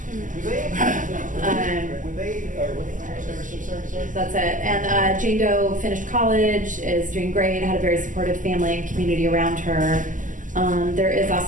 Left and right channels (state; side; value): late; left; 0.38 ms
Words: That's it. And Jane Doe finished college, is doing great, had a very supportive family and community around her. There is